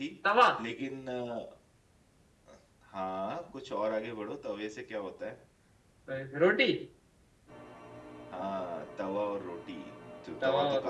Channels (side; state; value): both; identical; correlation 1.00